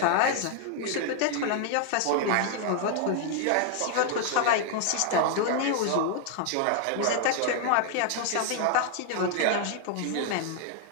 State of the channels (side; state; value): both; different; correlation 0.00